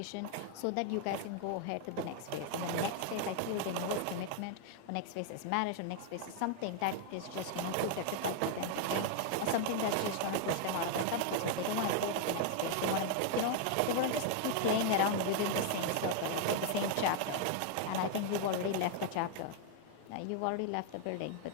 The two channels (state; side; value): different; both; correlation 0.00